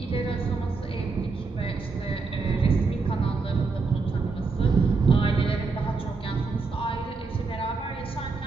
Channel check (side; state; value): left; quieter; 4.2 dB